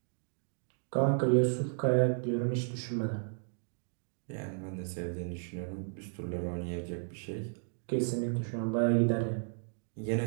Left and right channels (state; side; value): silent; left; digital silence